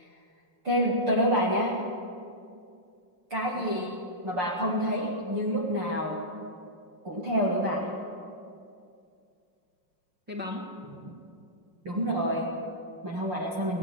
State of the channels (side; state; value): left; late; 5.6 ms